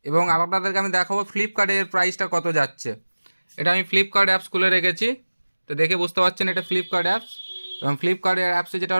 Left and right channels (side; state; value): both; inverted; correlation -1.00